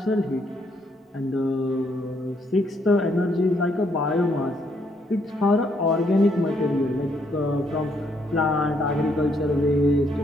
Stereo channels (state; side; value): normal; both; correlation 0.72